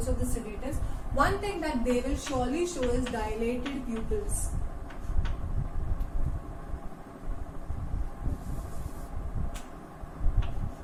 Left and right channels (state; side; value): identical; both; correlation 1.00